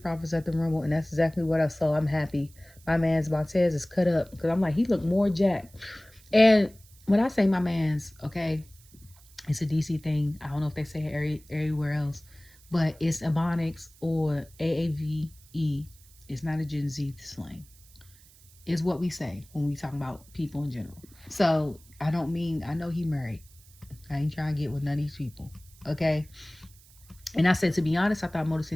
Profits at the Rumble, and that's exactly what I saw. I'm happy. My man's Montez is cut up because I'm like, he looked more jacked. And when I say my man's, okay, it's a DC thing. I don't know if they say it everywhere else, but it's Ebonics or AAVE. It's not a Gen Z slang. Is what we say when we talk about people in general. So I know he married. I ain't trying to get with none of these people. Okay. And I said, to be honest, I thought Motor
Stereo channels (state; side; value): noise; right; hiss, 26 dB below the sound